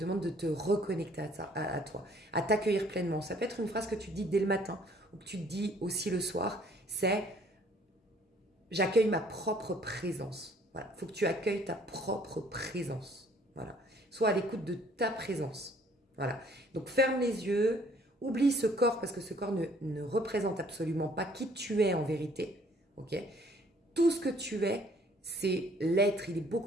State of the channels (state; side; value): normal; both; correlation 0.59